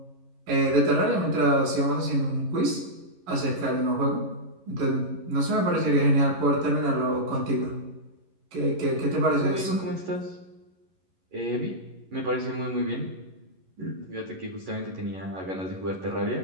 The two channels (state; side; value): late; left; 11 ms